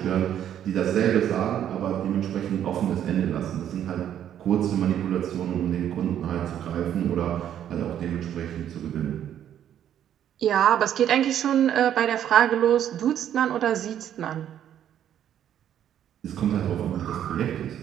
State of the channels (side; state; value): left; quieter; 10.3 dB